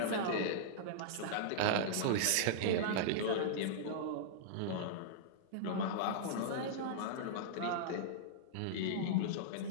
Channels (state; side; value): different; both; correlation -0.02